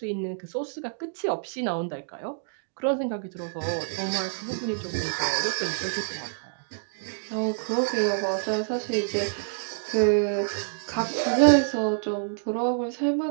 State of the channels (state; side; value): silent; left; digital silence